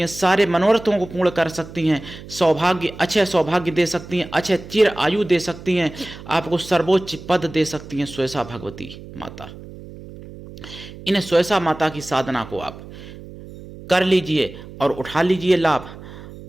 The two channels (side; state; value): right; noise; hum, 15 dB below the sound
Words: सारे मनोरथों को पूर्ण कर सकती हैं, सौभाग्य, अच्छे सौभाग्य दे सकती हैं, अच्छे चिर आयु दे सकती हैं, आपको सर्वोच्च पद दे सकती हैं सुयसा भगवती माता। इन सुयसा माता की साधना को आप कर लीजिए और उठा लीजिए लाभ।